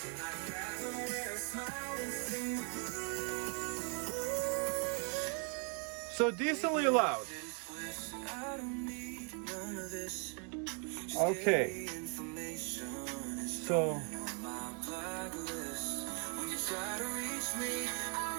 I'd rather wear a smile and sing the blues. So decently loud. I don't need none of this. Okay. So try to reach me, I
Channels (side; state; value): left; quieter; 38.7 dB